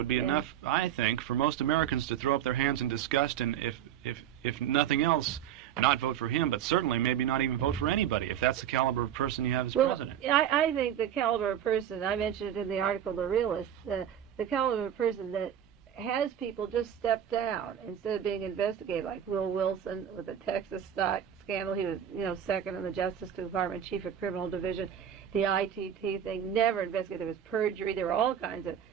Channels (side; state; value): left; quieter; 9.8 dB